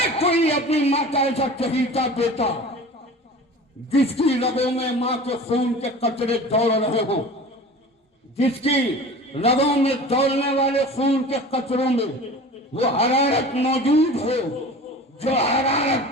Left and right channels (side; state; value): both; normal; correlation 0.38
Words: کوئی اپنی ماں کا ایسا چہیتا بیٹا جس کی رگوں میں ماں کے خون کے قطرے دوڑ رہے ہوں، جس کی رگوں میں دوڑنے والے خون کے قطروں میں وہ حرارت موجود ہو جو